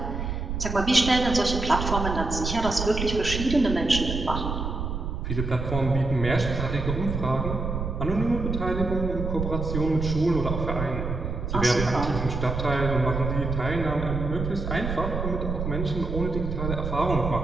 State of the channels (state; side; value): noise; right; rumble, 4 dB below the sound